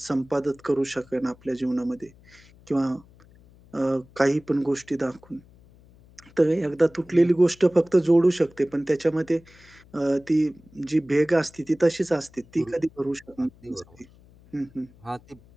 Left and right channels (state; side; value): noise; left; hum, 26 dB below the sound